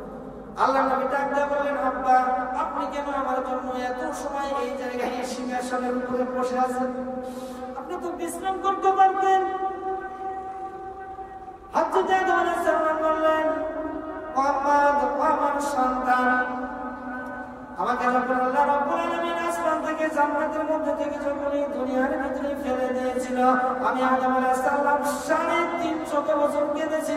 আল্লাহ নবী ডাক দিয়ে বললেন, আব্বা, আপনি কেন আমার জন্য এত সময় এই জায়গায় সিংহাসনের উপরে বসে আছেন? আপনি তো বিশ্রাম করতে পারতেন। হযরত আদম আলাইহিস সালাম বললেন, মুহাম্মদ, আমার সন্তান, আমাকে যখন আল্লাহ রাব্বুল আলামিন আসমান থেকে জান্নাতের মধ্যে থেকে যখন এই দুনিয়ার ভিতরে ফেলে দিয়েছিল, আমি আদম আলাইহিস সালাম 350 বছর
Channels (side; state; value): both; identical; correlation 1.00